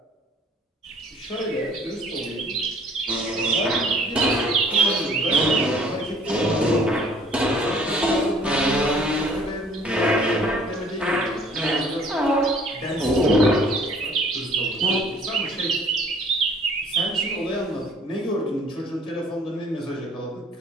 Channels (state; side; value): normal; both; correlation 0.55